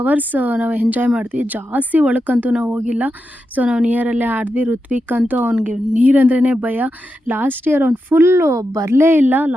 ನಾವು ಎಂಜಾಯ್ ಮಾಡ್ತೀವಿ. ಜಾಸ್ತಿ ಒಳಕ್ಕಂತೂ ನಾವು ಹೋಗಿಲ್ಲ. ಸೊ ನಾವು ನಿಯರಲ್ಲೇ ಆಡಿದ್ವಿ. ಋತ್ವಿಕ್ ಅಂತೂ ಅವ್ನಿಗೆ ನೀರಂದ್ರೇ ಭಯ. ಲಾಸ್ಟ್ ಇಯರ್ ಅವ್ನು ಫುಲ್ಲು ಬರಲೇ ಇಲ್ಲ.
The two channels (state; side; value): normal; both; correlation 0.88